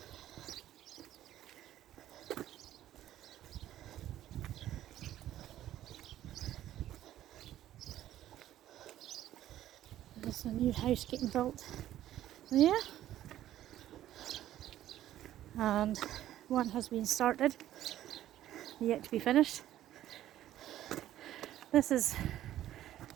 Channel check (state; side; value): quieter; left; 12.8 dB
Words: There's a new house getting built there, and one has been started, yet to be finished. This is